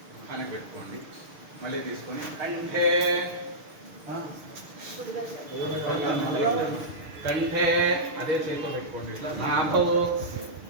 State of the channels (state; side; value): late; left; 6.5 ms